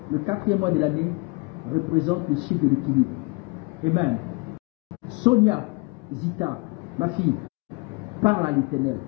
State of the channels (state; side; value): quieter; right; 28.0 dB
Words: Le 4e mois de l'année représente le chiffre de l'équilibre. Amen. Sonia, Zita, ma fille, parle à l'Éternel.